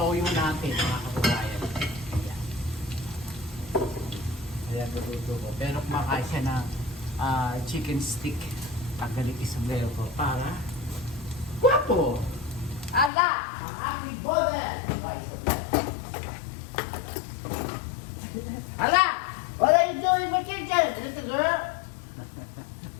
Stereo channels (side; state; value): right; drops out; at 13.1 s